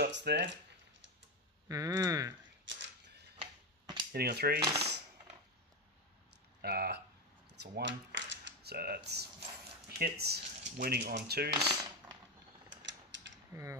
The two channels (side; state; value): both; normal; correlation 0.12